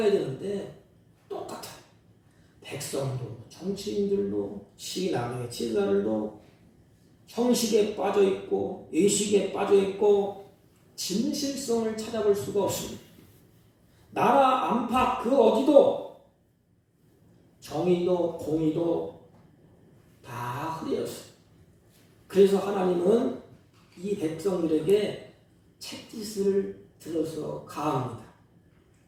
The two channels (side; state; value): both; identical; correlation 1.00